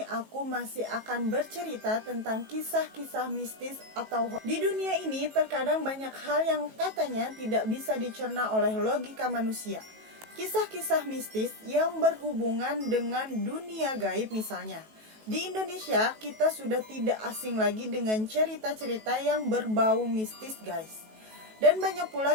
aku masih akan bercerita tentang kisah-kisah mistis atau di dunia ini terkadang banyak hal yang katanya tidak bisa dicerna oleh logika manusia. Kisah-kisah mistis yang berhubungan dengan dunia gaib misalnya. Di Indonesia, kita sudah tidak asing lagi dengan cerita-cerita yang berbau mistis guys. Dan banyak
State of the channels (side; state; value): left; late; 18 ms